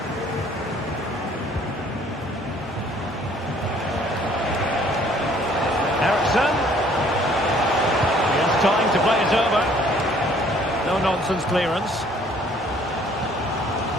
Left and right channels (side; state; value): both; normal; correlation 0.59